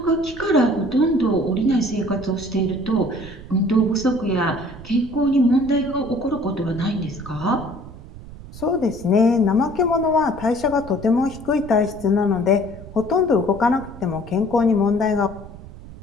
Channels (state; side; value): noise; right; rumble, 16 dB below the sound